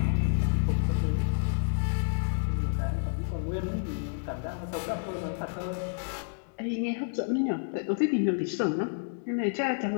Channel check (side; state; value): right; silent; digital silence